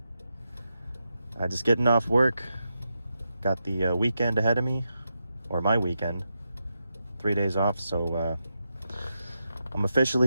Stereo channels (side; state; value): both; inverted; correlation -0.87